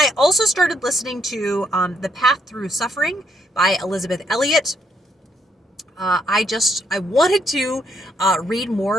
also started listening to The Path Through Suffering by Elizabeth Elliot. I wanted to read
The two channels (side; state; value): both; normal; correlation 0.74